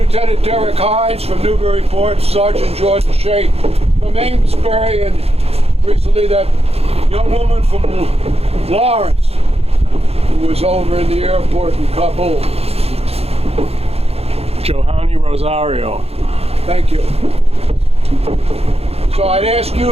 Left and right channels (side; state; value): left; late; 0.29 ms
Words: Derek Hines from Newburyport, Sergeant Jordan Shea from Amesbury, and recently that young woman from Lawrence who was over in the airport in Kabul. Johanny Rosario. Thank you. So I'd ask